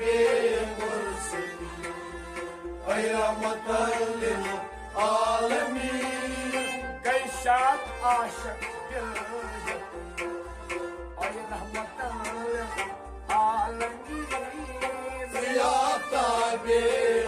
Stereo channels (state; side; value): identical; both; correlation 1.00